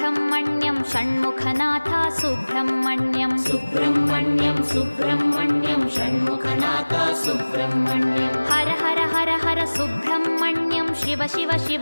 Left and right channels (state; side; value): inverted; both; correlation -1.00